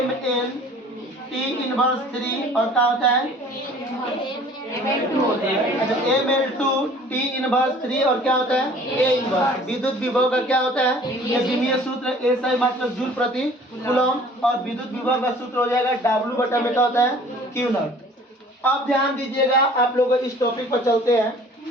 ML T इनवर्स 3 और क्या होता है? ML2 T इनवर्स 3 और क्या होता है? A inverse. विद्युत विभव का क्या होता है? ये बीबीए सूत्र A सही मात्रक जूल प्रति कूलम। और विद्युत विभव का सूत्र हो जाएगा W बटा में क्या होता है? Q not. अब ध्यान दीजिएगा, आप लोग इस टॉपिक पर चलते हैं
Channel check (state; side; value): normal; both; correlation 0.50